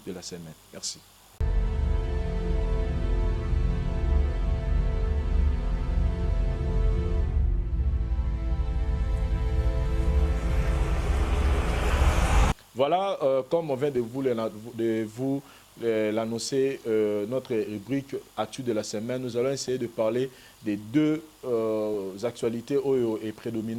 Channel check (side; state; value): both; identical; correlation 1.00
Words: de la semaine. Merci. Voilà, comme on vient de vous l'annoncer, notre rubrique Actu de la semaine, nous allons essayer de parler des deux actualités Oyo et